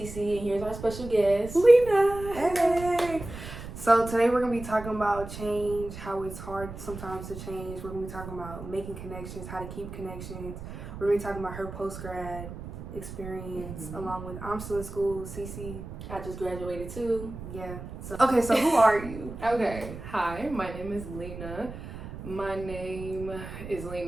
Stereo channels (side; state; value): right; noise; rumble, 11 dB below the sound